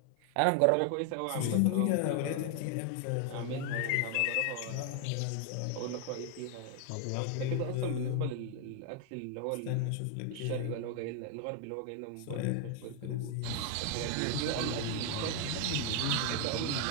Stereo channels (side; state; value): both; different; correlation 0.00